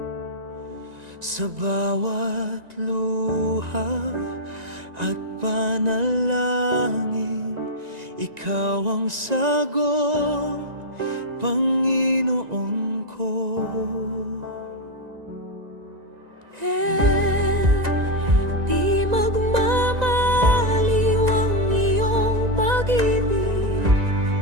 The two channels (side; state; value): left; late; 1.9 ms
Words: Sa bawat luha at panalangin, ikaw ang sagot, Panginoon ko. Di magmamaliw ang iyong pag-ibig,